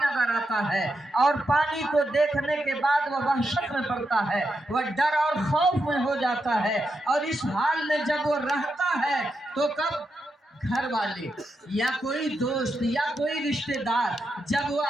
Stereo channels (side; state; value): both; normal; correlation 0.85